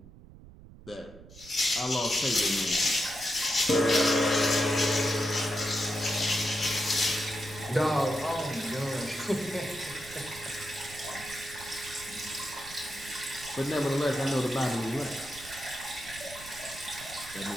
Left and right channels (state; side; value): noise; right; rumble, 18 dB below the sound